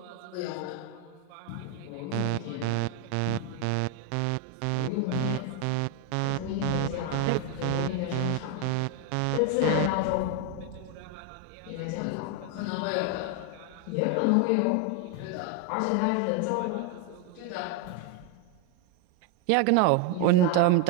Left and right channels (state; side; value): different; both; correlation 0.01